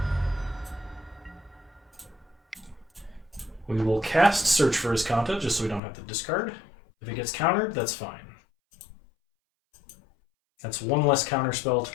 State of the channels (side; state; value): right; drops out; at 5.8 s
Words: We will cast Search for Azcanta just so we don't have to discard. If it gets countered, that's fine. That's 1 less counter spell to